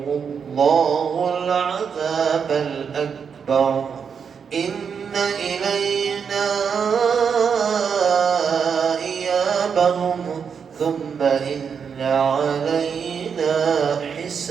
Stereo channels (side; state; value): left; quieter; 6.6 dB